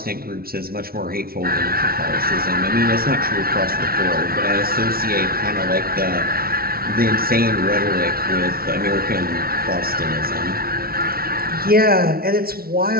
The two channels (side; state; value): left; late; 0.44 ms